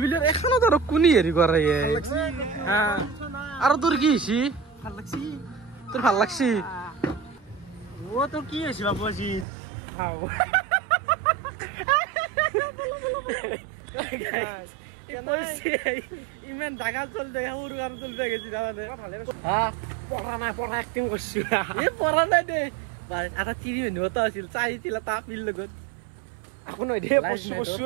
বুলি এখনত আৰু কোনি হেৰি কৰে আৰু তোৰ কি হৈছে ভাল লাগছি তোৰ ভাল লাগছি ও তোৰ কি হৈছে বাবু আজি ইমান ডাঙৰ চল দে সৰু আৰু চল দে গেছি জানানে পঢ়া নাই পঢ়া এক্টিং কৰছি পঢ়া নাই দে আধা টিভি নিবতা আছিল চাইছিল এটা আপিৰ লগত আকৌ নহয় দে কচু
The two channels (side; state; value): left; drops out; at 9.5 s